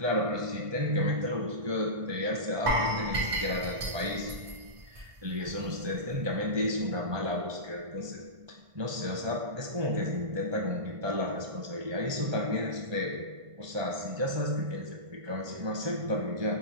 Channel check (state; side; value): late; left; 1.5 ms